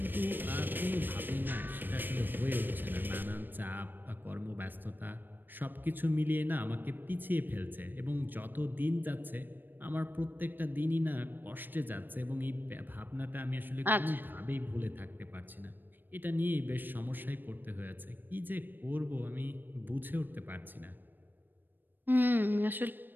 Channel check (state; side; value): late; left; 0.093 ms